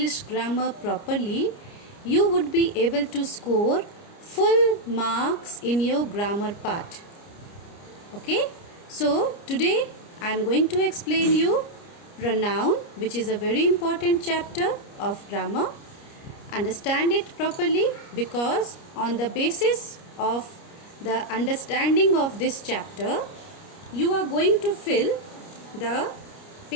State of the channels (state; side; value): late; right; 29 ms